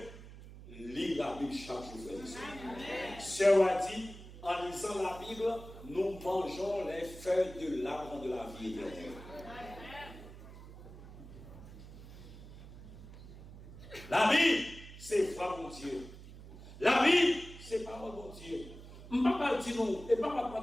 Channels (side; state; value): right; noise; hum, 15 dB below the sound